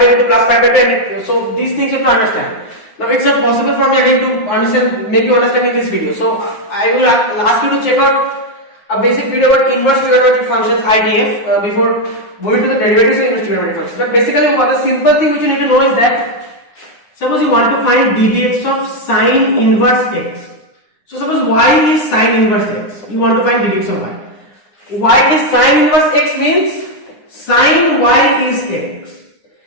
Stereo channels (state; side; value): late; right; 9.7 ms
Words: 2 to plus pi by 2, so these things you have to understand. Now it's not possible for me again to understand, make you understand in this video. So I will ask you to check out a basic video about inverse trigonometric functions, IDF, before going to the derivatives of inverse trigonometric functions. But basically the simple thing which you need to know is that suppose you want to find ddx of sine inverse x. So suppose y is sine inverse x. You want to find ddx of y. Y is sine inverse x means sine y is x.